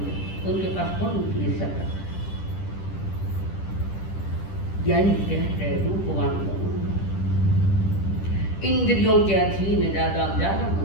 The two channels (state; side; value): late; right; 10 ms